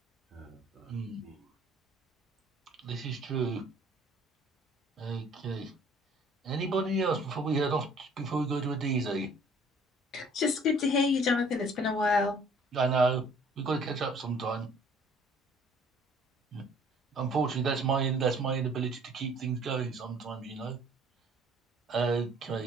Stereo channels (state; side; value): normal; both; correlation 0.55